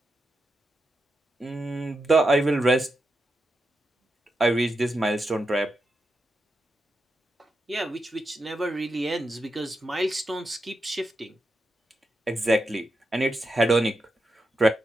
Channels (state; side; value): normal; both; correlation 0.87